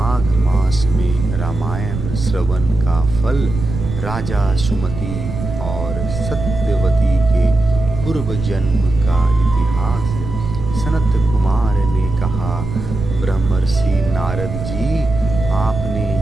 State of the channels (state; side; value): noise; right; rumble, 6 dB below the sound